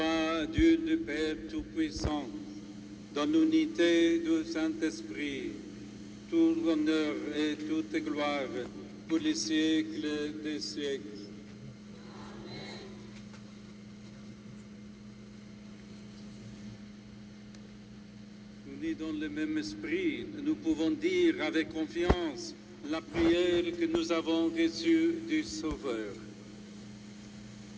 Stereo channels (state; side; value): identical; both; correlation 1.00